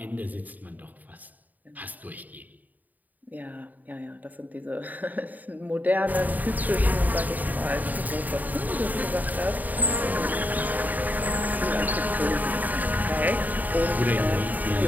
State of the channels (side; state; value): left; late; 0.082 ms